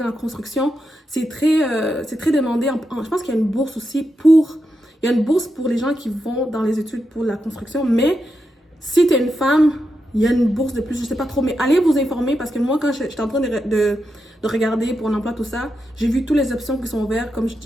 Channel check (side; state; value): both; normal; correlation 0.86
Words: la construction, c'est très demandé. Je pense qu'il y a une bourse aussi il y a une bourse pour les gens qui vont dans les études pour la construction, mais si tu es une femme, il y a une bourse de plus, je sais pas trop, mais allez vous informer parce que moi, quand j'étais en train de regarder pour un emploi, tout ça, j'ai vu toutes les options qui sont ouvertes, comme